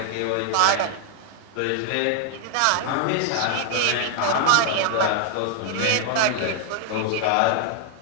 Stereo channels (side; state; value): both; different; correlation 0.00